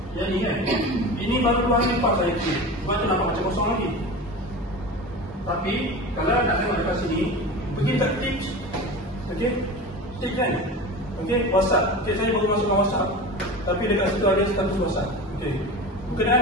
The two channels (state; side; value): normal; both; correlation 0.30